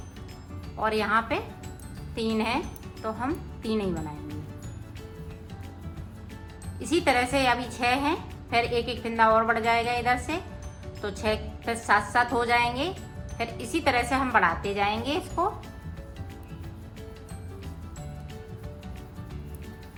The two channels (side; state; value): both; identical; correlation 1.00